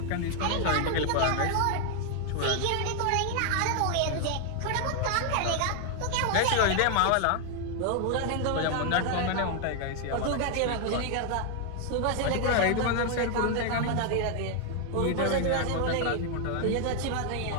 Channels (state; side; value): different; both; correlation 0.00